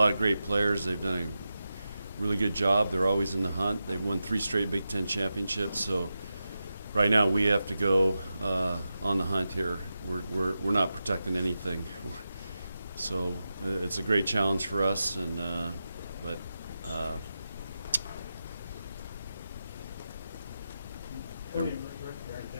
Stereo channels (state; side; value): inverted; both; correlation -0.91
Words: of great players. They've done a really good job. They're always in the hunt. They've won 3 straight Big Ten championships. So right now we have to go on the hunt here. We're not protecting anything. So it's a great challenge for us. And but.